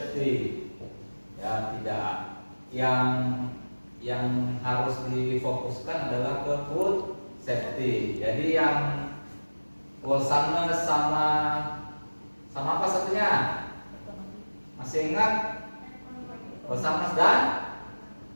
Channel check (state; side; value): inverted; both; correlation -1.00